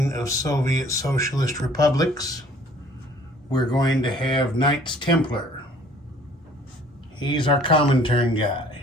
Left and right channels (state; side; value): normal; both; correlation 0.55